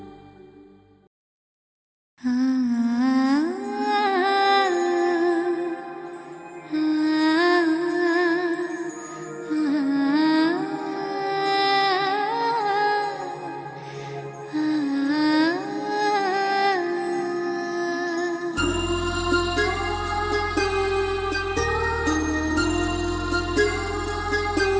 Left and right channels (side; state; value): both; identical; correlation 1.00